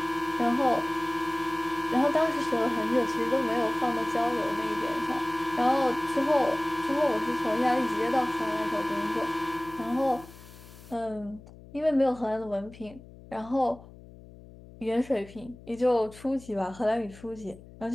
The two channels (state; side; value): noise; left; hum, 19 dB below the sound